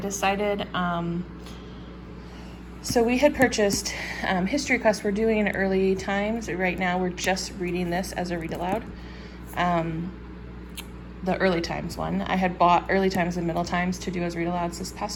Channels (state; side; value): identical; both; correlation 1.00